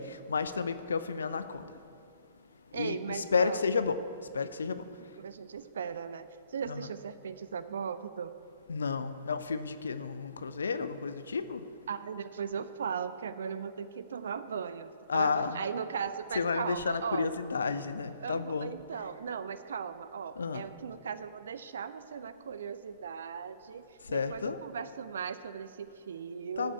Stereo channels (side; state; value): both; inverted; correlation -0.73